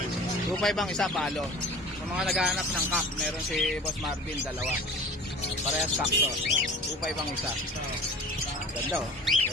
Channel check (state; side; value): normal; both; correlation 0.41